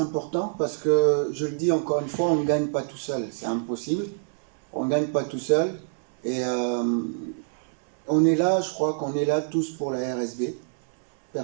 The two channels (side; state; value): left; silent; 61 dB below the other